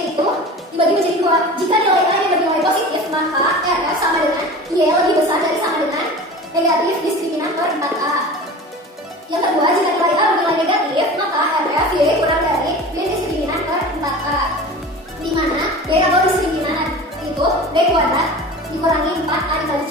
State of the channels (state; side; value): normal; both; correlation 0.36